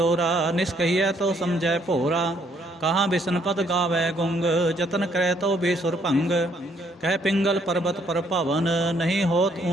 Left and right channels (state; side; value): normal; both; correlation 0.68